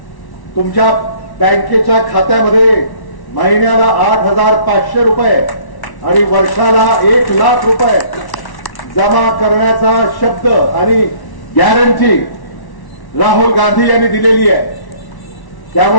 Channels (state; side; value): late; right; 1.1 ms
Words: तुमच्या बँकेच्या खात्यामध्ये महिन्याला 8,500 रुपये आणि वर्षाला 1,00,000 रुपये जमा करण्याचा शब्द आणि गॅरंटी राहुल गांधी यांनी दिलेली आहे.